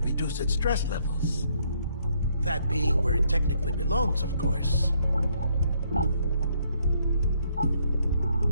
its stress levels. That being where it technically belongs, of course.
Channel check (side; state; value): both; inverted; correlation -0.69